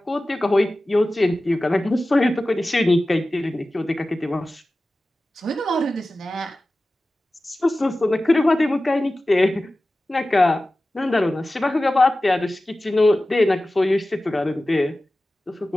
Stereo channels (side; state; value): both; normal; correlation 0.96